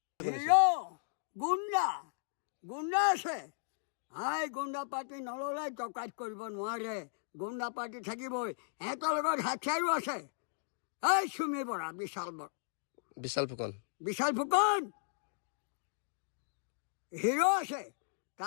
গুণ্ডা আছে। হাই গুণ্ডা পাৰ্টি নল'লে ডকাইত কৰিব নোৱাৰে। গুণ্ডা পাৰ্টি থাকিবই, সিহঁতৰ লগত হাথিয়াৰো আছে। এই চুমি বৰা বিশাল ফুকন হিৰো আছে।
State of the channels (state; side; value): silent; right; digital silence